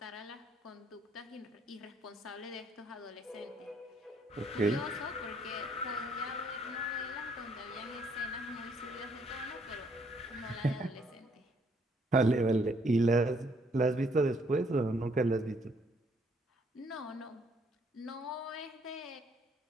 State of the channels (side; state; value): both; normal; correlation 0.67